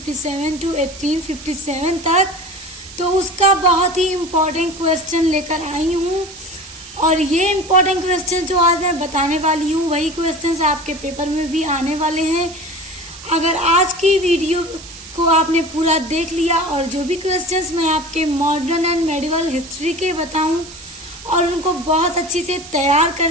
to 1857 तक, तो उसका बहुत ही इम्पोर्टेंट क्वेश्चन लेकर आई हूँ। और ये इम्पोर्टेंट क्वेश्चन जो आज मैं बताने वाली हूँ वही क्वेश्चंस आपके पेपर में भी आने वाले हैं। अगर आज की वीडियो को आपने पूरा देख लिया और जो भी क्वेश्चंस मैं आपके मॉडर्न एंड मेडिवल हिस्ट्री के बताऊँ और उनको बहुत अच्छी से तैयार कर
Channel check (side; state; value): right; noise; hiss, 16 dB below the sound